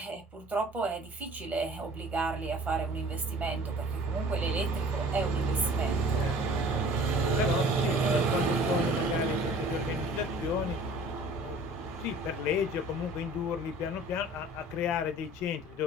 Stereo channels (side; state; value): both; normal; correlation 0.48